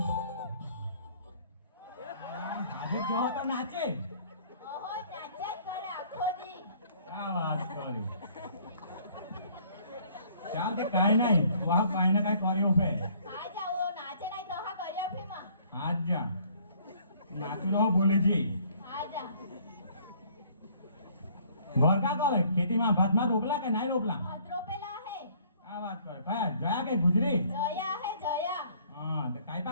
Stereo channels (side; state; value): both; inverted; correlation -0.59